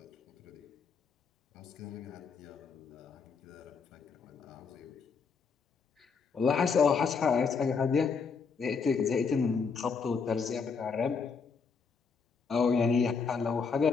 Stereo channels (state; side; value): quieter; right; 5.3 dB